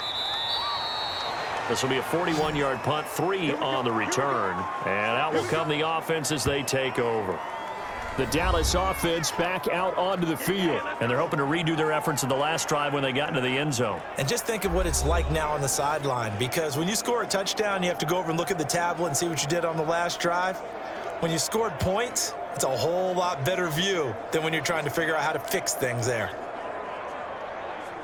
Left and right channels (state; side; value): identical; both; correlation 1.00